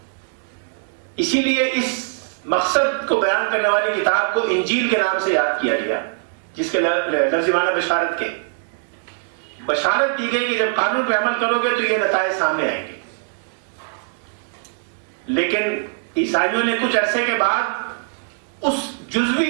اسی لیے اس مقصد کو بیان کرنے والی کتاب کو انجیل کے نام سے یاد کیا گیا، جس کے لفظی معنی بشارت کے. بشارت دی گئی کہ جب قانون پہ عمل کرو گے تو یہ نتائج سامنے آئیں گے. لیکن عیسائیوں نے کچھ عرصے کے بعد اس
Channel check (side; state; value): left; silent; digital silence